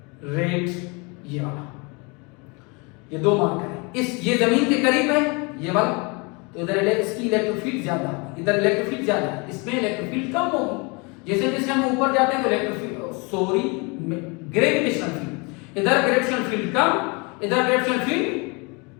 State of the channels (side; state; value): right; quieter; 29.9 dB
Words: रेड, ये वाला, ये 2 मार्कर है। ये जमीन के करीब है ये वाला, तो इधर इसकी इलेक्ट्रिक फील्ड ज्यादा है, इधर इलेक्ट्रिक फील्ड ज्यादा है, इसमें इलेक्ट्रिक फील्ड कम होगी। जैसे जैसे हम ऊपर जाते हैं तो इलेक्ट्रिक फील्ड ग्रेविटेशनल फील्ड, इधर ग्रेविटेशनल फील्ड कम, इधर ग्रेविटेशनल